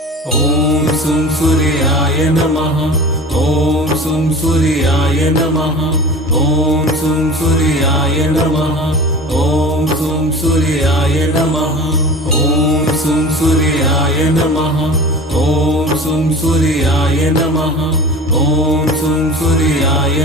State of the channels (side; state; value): both; normal; correlation 0.36